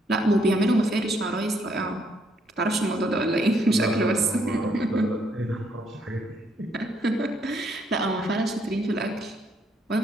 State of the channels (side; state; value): both; normal; correlation 0.71